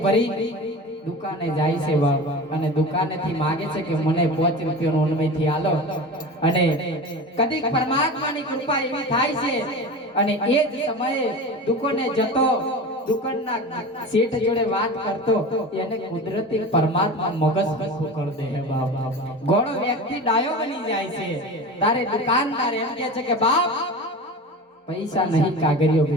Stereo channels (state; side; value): normal; both; correlation 0.31